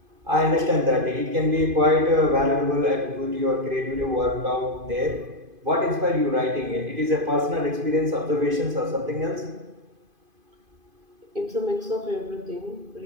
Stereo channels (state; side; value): late; left; 2.5 ms